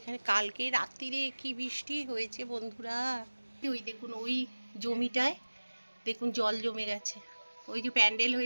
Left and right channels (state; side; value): inverted; both; correlation -1.00